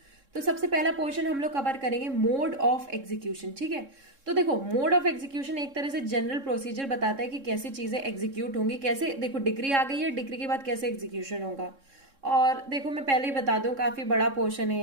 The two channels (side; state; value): left; late; 3.7 ms